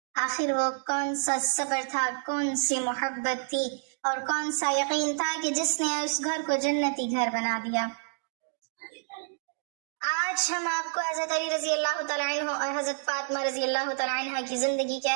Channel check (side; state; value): left; silent; digital silence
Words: آخر وہ کون سا صبر تھا، کون سی محبت تھی اور کون سا یقین تھا کہ جس نے اس گھر کو جنتی گھر بنا دیا۔ آج ہم آپ کو حضرت علی رضی اللہ تعالیٰ عنہ اور حضرت فاطمہ رضی اللہ تعالیٰ عنہ کی زندگی کے